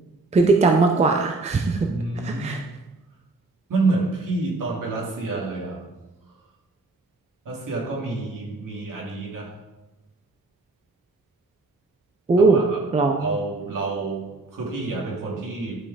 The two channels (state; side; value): quieter; left; 3.2 dB